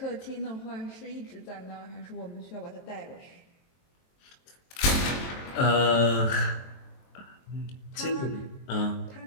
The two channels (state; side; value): late; right; 23 ms